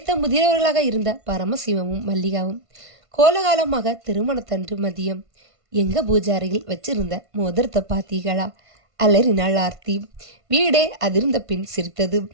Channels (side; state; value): left; late; 1.5 ms